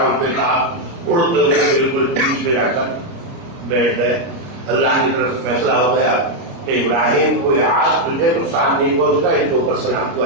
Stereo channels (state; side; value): late; left; 29 ms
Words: پہ کہا، اڑتے ہوئے بالکل بیچ میں جا کر بیٹھ گئے، اللہ کی طرف سے فیصلہ ہو گیا کہ ابراہیم کو آج تجھے نقصان نہیں پہنچتا، ان کے اوپر سلام کو